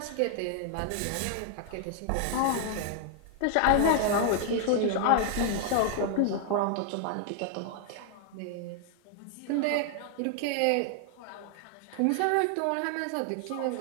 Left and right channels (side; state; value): both; different; correlation 0.00